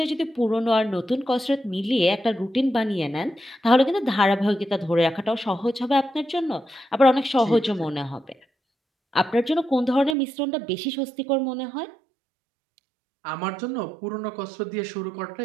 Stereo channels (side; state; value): left; drops out; at 10.2 s